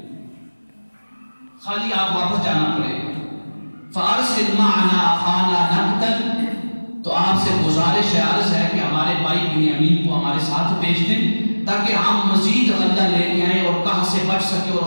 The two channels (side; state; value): both; inverted; correlation -1.00